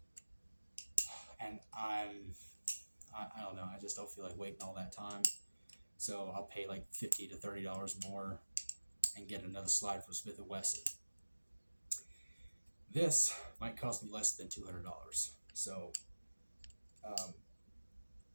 And I don't know. I just don't feel like waiting all that time. So I'll pay like $50 to $30 more and get another slide from Smith & Wesson. This might cost me less than $200. So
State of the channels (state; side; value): inverted; both; correlation -1.00